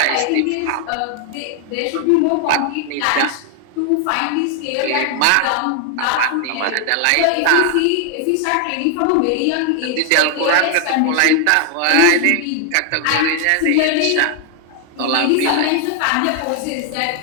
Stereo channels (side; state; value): both; different; correlation 0.00